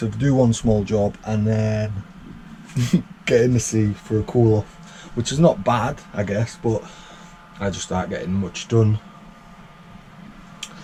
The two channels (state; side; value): identical; both; correlation 1.00